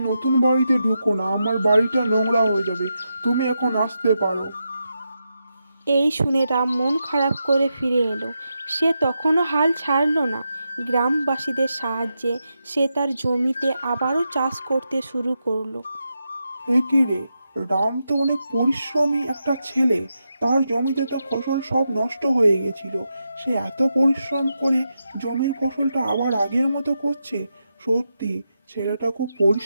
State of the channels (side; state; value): both; inverted; correlation -0.86